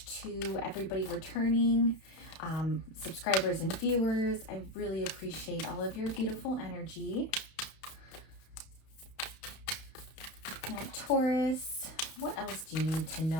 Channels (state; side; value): late; right; 31 ms